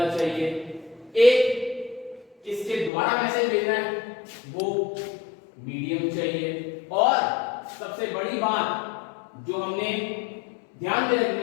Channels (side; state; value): right; drops out; at 2.9 s